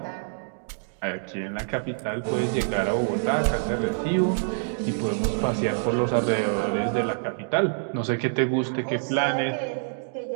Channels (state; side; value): silent; left; digital silence